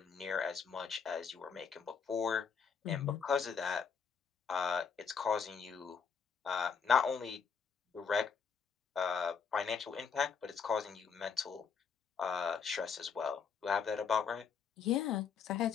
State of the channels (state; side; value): quieter; right; 6.2 dB